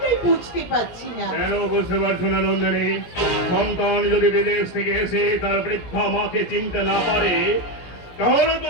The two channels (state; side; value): late; right; 17 ms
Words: বুঝতে পারছি না। কেন বুঝতে পারছো না নন্দিনী? সন্তান যদি বিদেশ থেকে এসে তার বৃদ্ধা মাকে চিনতে না পারে, তাহলে তো